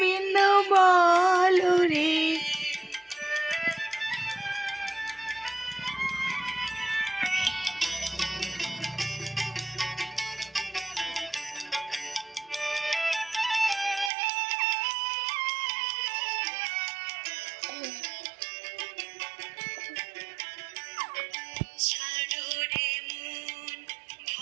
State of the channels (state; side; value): drops out; left; at 14.1 s